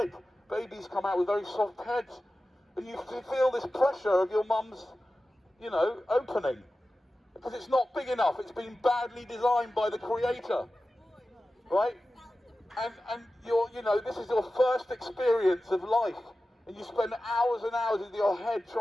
Babies come out with very soft heads, and you feel this pressure of your mum's, opening, because it's not big enough. It's been badly designed by the creator, right? And this is your first experience of life, and you spend hours and hours with your head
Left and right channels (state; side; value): normal; both; correlation 0.94